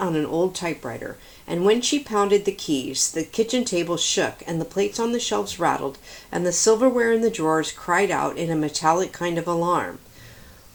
an old typewriter, and when she pounded the keys, the kitchen table shook, and the plates on the shelves rattled, and the silverware in the drawers cried out in a metallic kind of alarm.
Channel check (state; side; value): identical; both; correlation 1.00